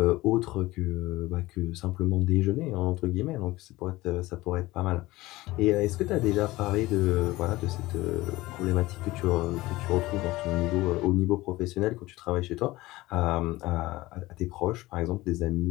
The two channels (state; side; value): quieter; right; 19.0 dB